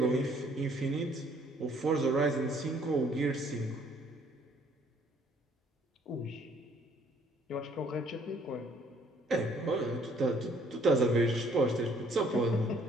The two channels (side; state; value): both; normal; correlation 0.62